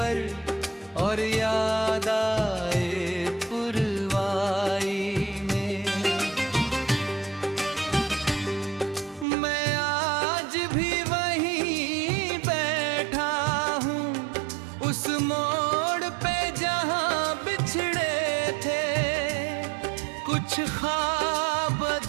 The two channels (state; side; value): drops out; left; at 9.2 s